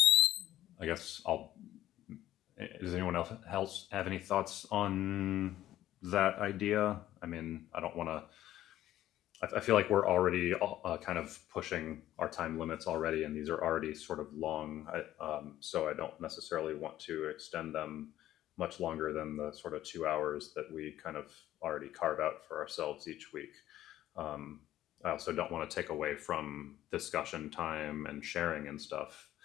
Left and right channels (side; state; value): right; quieter; 13.5 dB